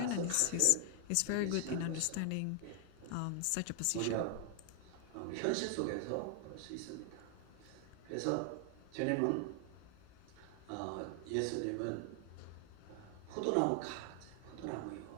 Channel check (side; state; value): both; different; correlation 0.00